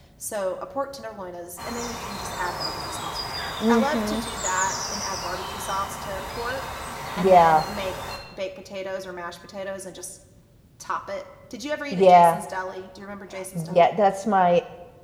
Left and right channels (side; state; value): both; identical; correlation 1.00